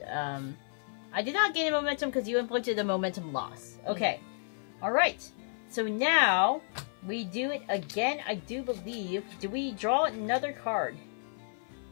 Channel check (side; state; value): right; silent; 57 dB below the other